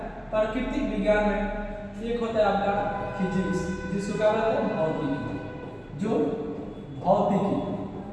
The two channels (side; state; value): both; identical; correlation 1.00